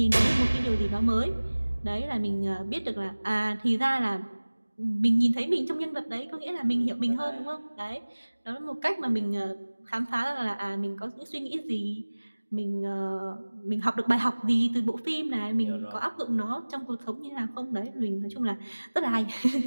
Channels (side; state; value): both; inverted; correlation -1.00